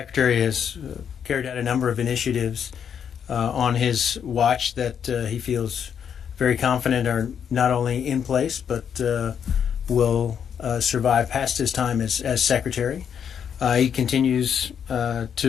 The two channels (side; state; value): right; quieter; 8.0 dB